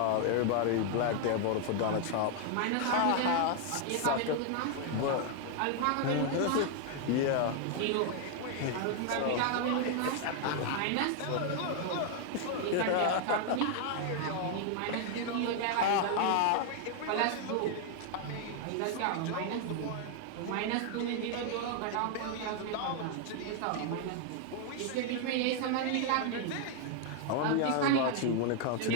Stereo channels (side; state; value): both; different; correlation 0.00